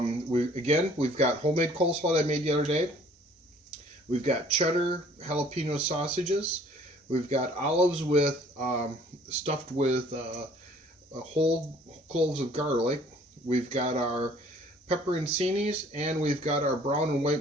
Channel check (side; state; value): both; normal; correlation 0.56